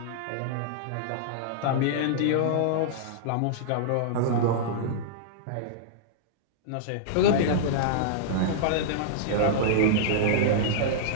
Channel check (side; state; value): both; different; correlation -0.02